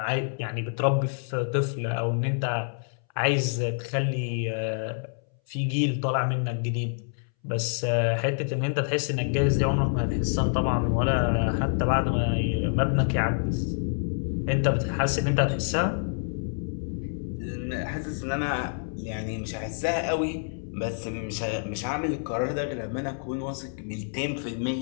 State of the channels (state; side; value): silent; right; 60 dB below the other